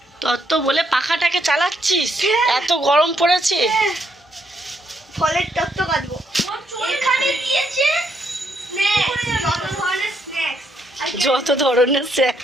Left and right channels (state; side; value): normal; both; correlation 0.75